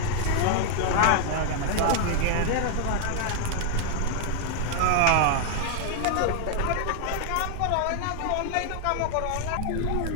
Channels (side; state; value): both; different; correlation 0.00